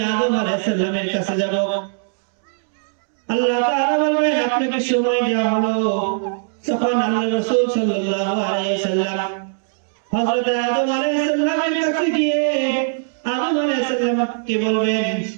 আদম আলাইহিস সালামের কাছে যাব। আল্লাহ তাআলা বলবেন, আপনাকে সময় দেওয়া হলো। তখন আল্লাহ রাসূল সাল্লাল্লাহু আলাইহি ওয়াসাল্লাম হযরত আদম আলাইহিস সালামের কাছে গিয়ে আদম আলাইহিস সালামকে বলবেন,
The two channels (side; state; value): left; silent; digital silence